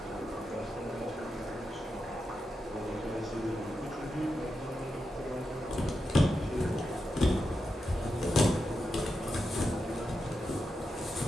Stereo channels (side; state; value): both; normal; correlation 0.88